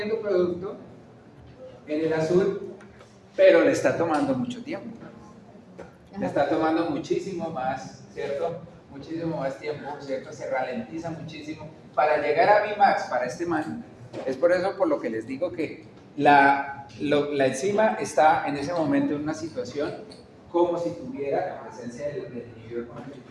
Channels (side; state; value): both; identical; correlation 1.00